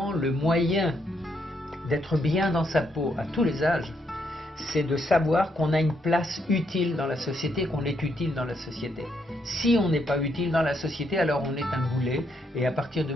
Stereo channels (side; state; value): both; normal; correlation 0.76